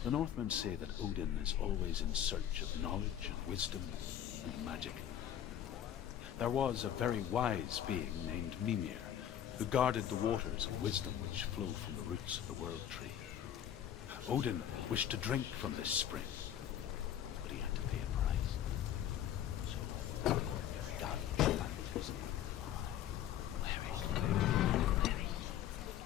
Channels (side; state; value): right; quieter; 10.5 dB